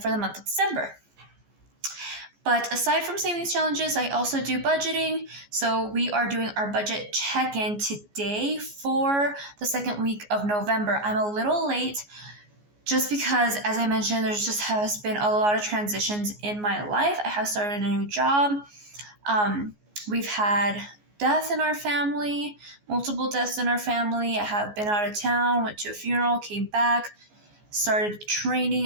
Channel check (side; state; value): left; late; 14 ms